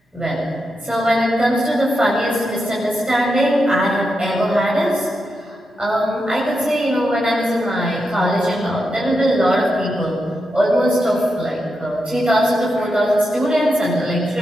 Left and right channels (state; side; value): normal; both; correlation 0.86